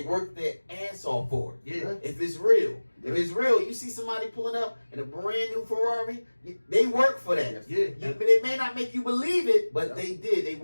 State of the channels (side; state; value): both; inverted; correlation -1.00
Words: work their ass off for it. Yeah. If it's real. If it's real, you see somebody pulling up in a brand new Ferrari, they work for that. Yeah. They may not make you believe it, but they did. They